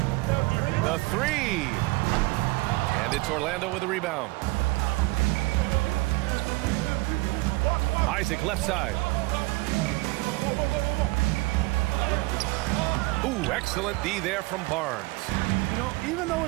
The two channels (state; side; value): quieter; left; 22.8 dB